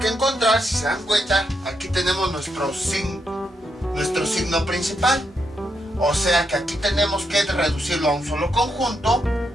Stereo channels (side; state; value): both; normal; correlation 0.81